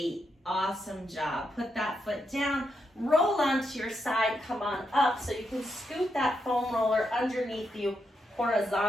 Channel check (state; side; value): normal; both; correlation 0.83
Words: Awesome job. Put that foot down. Roll onto your side. Come on up so you can scoot that foam roller underneath you